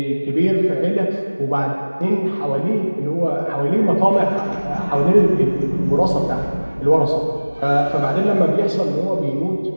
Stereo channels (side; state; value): both; inverted; correlation -1.00